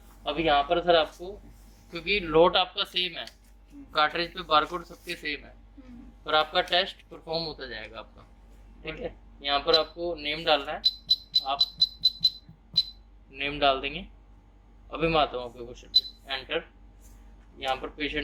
अब यहाँ पर सर आपको, क्योंकि लोड आपका सेम है, कार्ट्रिज पे बारकोड सबके सेम है, पर आपका टेस्ट परफॉर्म होता जाएगा आपका, ठीक है। यहाँ पर आपको नेम डालना है, आप नेम डाल देंगे। अभी मैं आता हूँ आपके क्वेश्चन पे, एंटर। यहाँ पर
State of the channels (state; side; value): identical; both; correlation 1.00